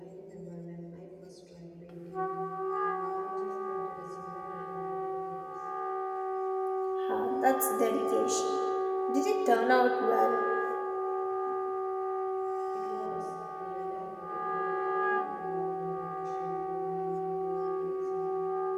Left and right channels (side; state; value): both; identical; correlation 1.00